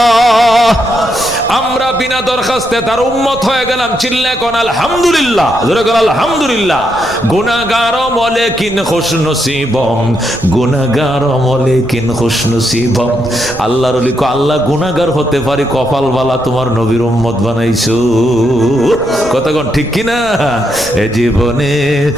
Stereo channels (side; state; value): right; noise; rumble, 16 dB below the sound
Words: আমরা বিনা দরখাস্তে তার উম্মত হয়ে গেলাম। চিল্লায় কোন আলহামদুলিল্লাহ। জোরে কোন আলহামদুলিল্লাহ। গুনাহগার মলেকিন খুশনসিবম, গুনাহগার মলেকিন খুশনসিবম। আল্লাহর ওলি কো আল্লাহ গুনাহগার হতে পারি, কপাল বালা তোমার নবীর উম্মত বানাইছো। কথা কোন ঠিক কি না? এ জীবনে